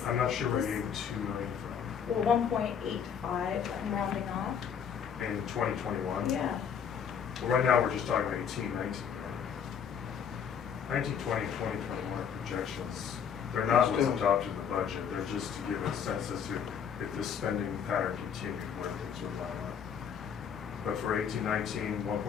I'm not sure where this- you get 2 million from. Well, 1.85, I'm rounding off. In 2021? Yeah. Well, right now, we're just talking about 18-19. 19-20, 20-21 projections. They're not what's adopted in the budget. They're just to give a sense as to if this spending pattern continued, where things would line up. But for 18-19,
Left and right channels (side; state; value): right; quieter; 7.6 dB